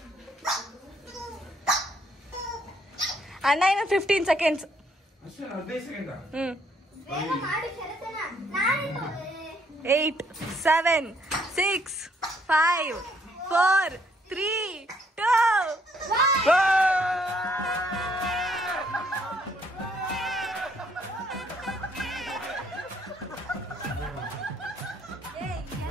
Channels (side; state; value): both; normal; correlation 0.68